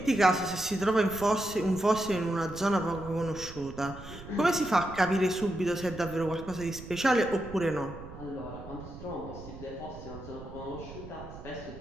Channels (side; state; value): right; noise; rumble, 14 dB below the sound